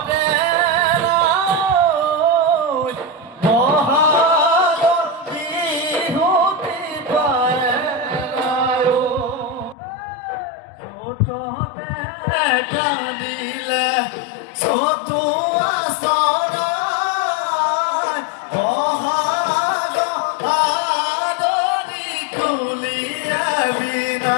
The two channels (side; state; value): right; drops out; at 9.8 s